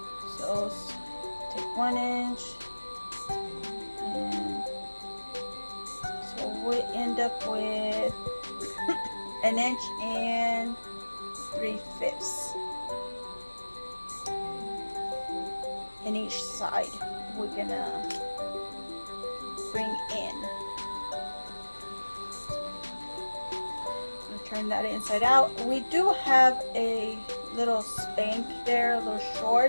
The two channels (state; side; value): inverted; both; correlation -1.00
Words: So take 1 inch, and so we end up with 1 inch and 3/5 in each side. We're gonna bring in. Turn that inside out. We do have a little spank there, little